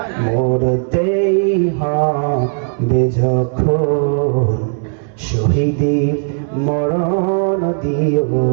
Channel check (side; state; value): left; silent; digital silence